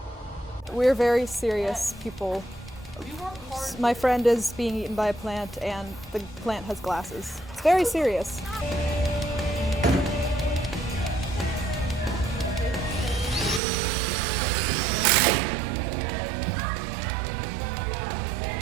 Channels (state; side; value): drops out; left; at 13.6 s